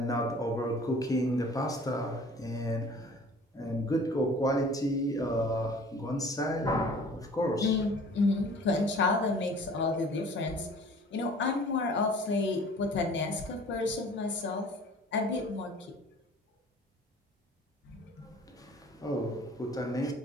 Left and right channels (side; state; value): both; normal; correlation 0.48